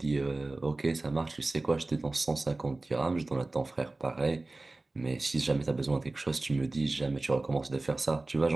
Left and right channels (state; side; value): quieter; left; 3.1 dB